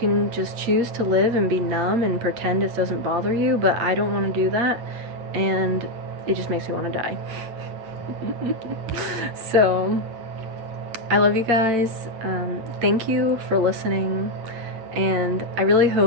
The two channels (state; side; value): late; left; 9.0 ms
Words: just choose to live and be numb and pretend it doesn't bother you, but I don't want to do that, and it just makes me want to die. So, I love you guys. Thank you for listening. And I really